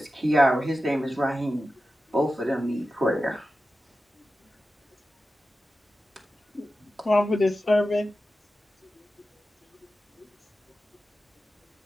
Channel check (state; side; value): normal; both; correlation 0.93